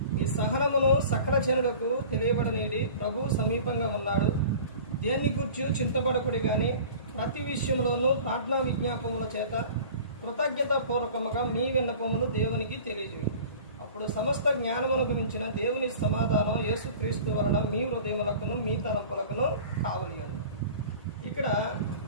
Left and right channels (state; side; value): inverted; both; correlation -0.42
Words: ఈ సహనమును సకల జనులకు తెలియబడనీడి, ప్రభువు సమీపంగా ఉన్నాడు. దేన్ని గూర్చి చింతపడకుడి గాని ప్రతి విషయంలోనూ ప్రార్థనా విజ్ఞాపముల చేత కృతజ్ఞతాపూర్వకముగా మీ విన్నపములు దేవునికి తెలియజేయండి. అప్పుడు సమస్త జ్ఞానమును గురించిన దేవుని సమాధానం యేసుక్రీస్తు వలన మీ హృదయములకును మీ తలంపులకును కావలియండి. ఇక్కడ